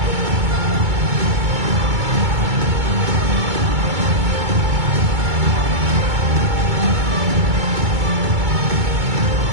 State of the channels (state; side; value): late; left; 2.2 ms